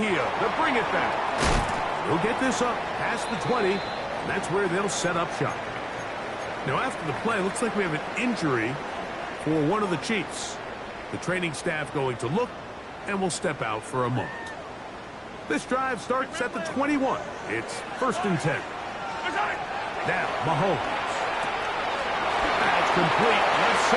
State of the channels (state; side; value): identical; both; correlation 1.00